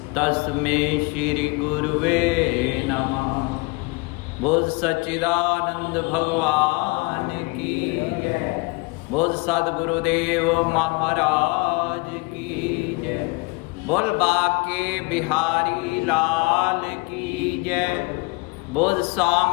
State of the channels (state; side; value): quieter; right; 27.3 dB